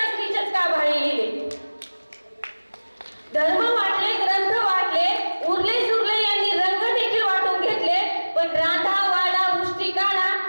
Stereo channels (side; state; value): both; inverted; correlation -1.00